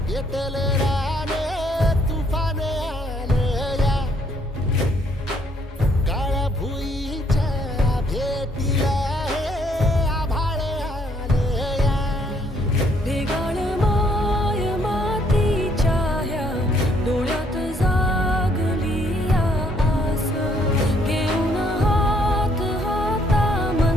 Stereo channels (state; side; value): normal; both; correlation 0.67